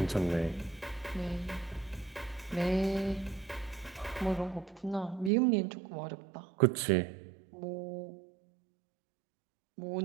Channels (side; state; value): left; drops out; at 5.3 s